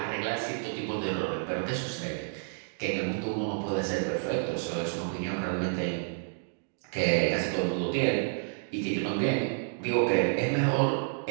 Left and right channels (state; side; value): silent; left; digital silence